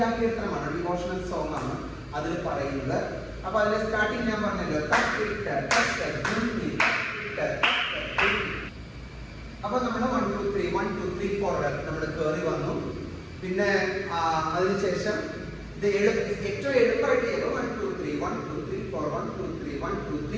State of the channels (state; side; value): identical; both; correlation 1.00